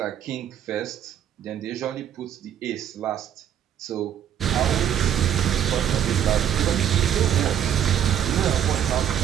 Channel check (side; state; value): left; quieter; 9.9 dB